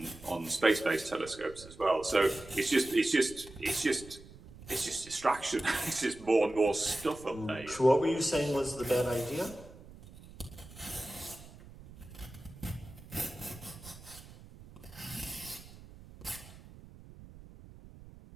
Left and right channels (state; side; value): noise; right; rumble, 18 dB below the sound